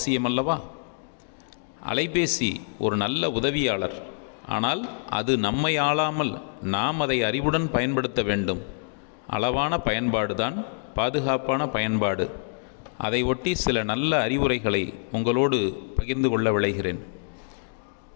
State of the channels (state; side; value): silent; right; digital silence